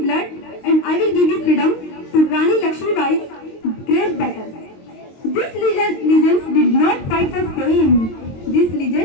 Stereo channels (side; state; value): right; late; 22 ms